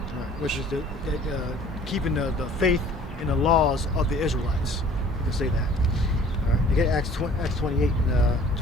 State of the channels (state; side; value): normal; both; correlation 0.51